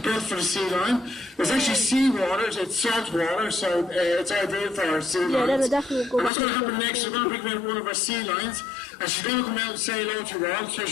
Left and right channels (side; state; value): right; drops out; at 6.3 s